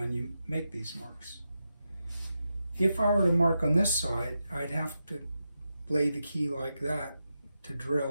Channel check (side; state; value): both; inverted; correlation -0.88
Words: you make these marks. If I were to mark on this side, I'd have to lay the key like that to